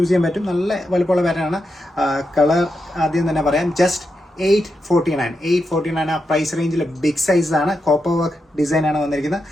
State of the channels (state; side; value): normal; both; correlation 0.86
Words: ചെയ്യാൻ പറ്റും. നല്ല വലുപ്പമുള്ള പാറ്റേൺ ആണ്. കളർ ആദ്യം തന്നെ പറയാം, ജസ്റ്റ് 849 ആ പ്രൈസ് റേഞ്ചിൽ ബിഗ് സൈസ് ആണ്. കോപ്പർ വർക്ക് ഡിസൈൻ ആണ് വന്നിരിക്കുന്നത്.